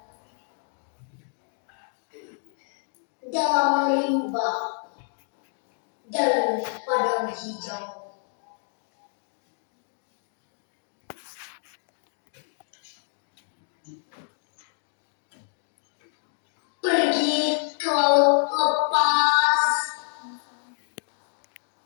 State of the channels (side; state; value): right; silent; 59 dB below the other